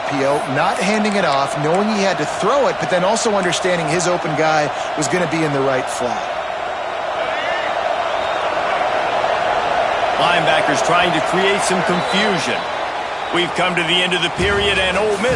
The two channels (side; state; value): both; identical; correlation 1.00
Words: not handing it off, knowing he had to throw it, but then also understanding his open guy was going to be in the right flat. Linebackers trying to create some confusion. We've come to the end of the period, and Ole